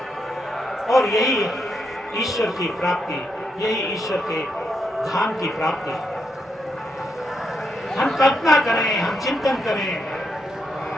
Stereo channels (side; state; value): both; normal; correlation 0.81